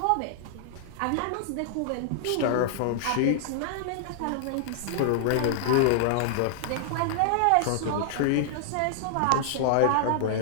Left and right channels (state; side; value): different; both; correlation -0.01